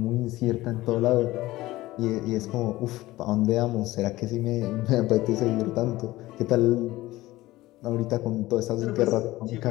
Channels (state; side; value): quieter; right; 17.7 dB